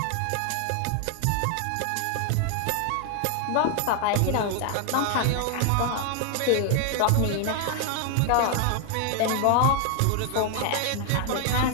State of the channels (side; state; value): both; different; correlation 0.00